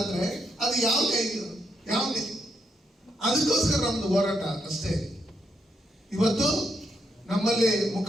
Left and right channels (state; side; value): normal; both; correlation 0.79